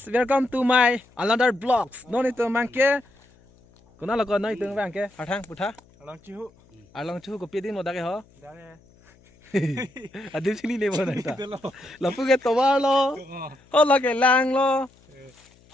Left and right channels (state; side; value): noise; left; hum, 29 dB below the sound